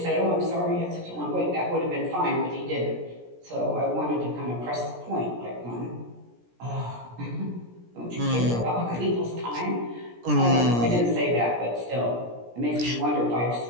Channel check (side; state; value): left; late; 17 ms